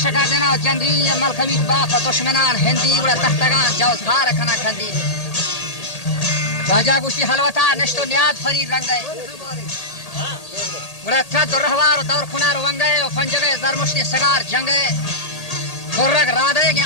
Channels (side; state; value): right; late; 1.8 ms